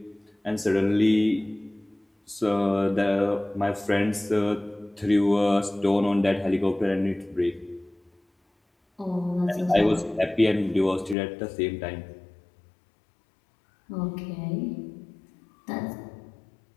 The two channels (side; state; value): right; drops out; at 11.2 s